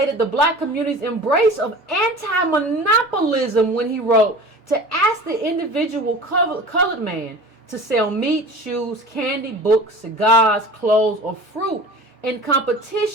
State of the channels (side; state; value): both; normal; correlation 0.39